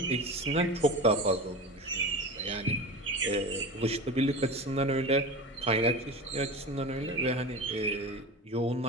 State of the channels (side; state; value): both; normal; correlation 0.30